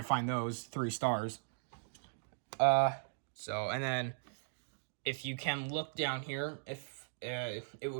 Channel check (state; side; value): silent; left; digital silence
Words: find those 3 stars. And then if you can look down here, if it